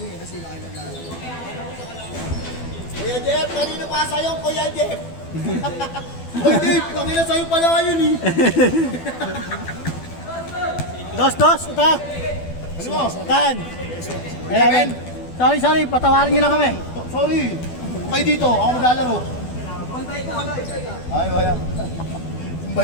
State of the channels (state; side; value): late; right; 12 ms